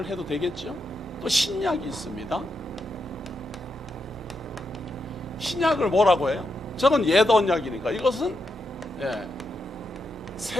해도 되겠죠? 또 신약이 있습니다. 신약을 뭐라고 해요? 저건 옛 언약이니까 이것은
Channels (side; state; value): both; normal; correlation 0.84